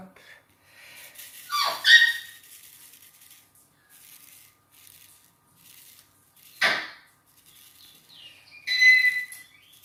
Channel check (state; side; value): identical; both; correlation 1.00